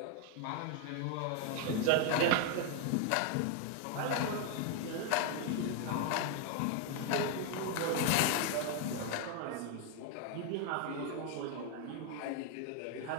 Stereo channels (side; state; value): both; different; correlation 0.00